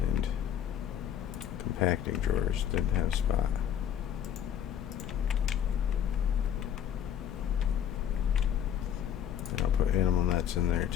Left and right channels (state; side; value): quieter; right; 9.5 dB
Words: compacting drawers didn't have a spot. And I'll put animal nets in there